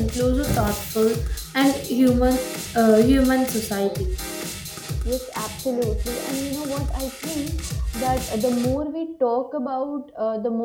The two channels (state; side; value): identical; both; correlation 1.00